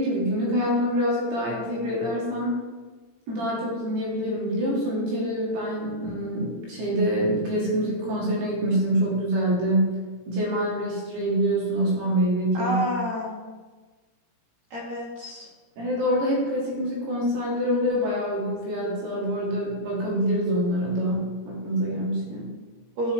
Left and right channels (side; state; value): left; late; 17 ms